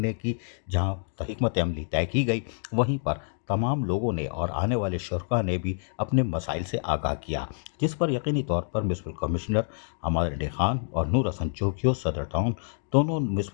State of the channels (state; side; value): silent; right; digital silence